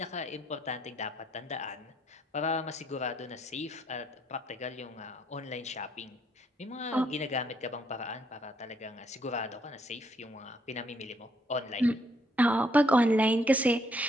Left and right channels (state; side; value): normal; both; correlation 0.70